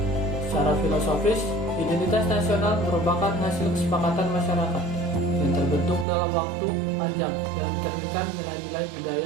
Secara filosofis, identitas nasional merupakan hasil kesepakatan masyarakat yang terbentuk dalam waktu panjang dan mencerminkan nilai-nilai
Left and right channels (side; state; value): left; drops out; at 6.1 s